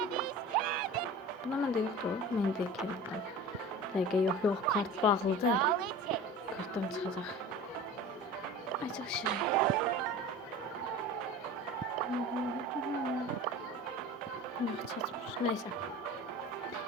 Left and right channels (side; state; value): both; normal; correlation 0.37